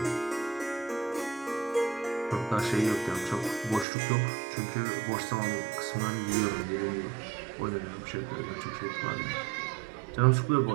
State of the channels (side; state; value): left; drops out; at 3.9 s